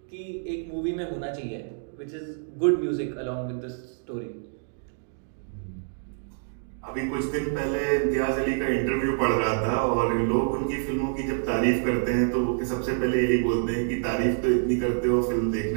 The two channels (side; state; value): left; silent; digital silence